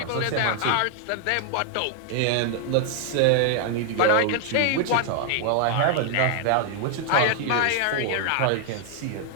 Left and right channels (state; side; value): different; both; correlation 0.00